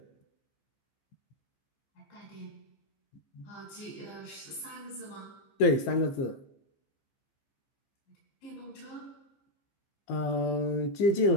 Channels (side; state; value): right; late; 15 ms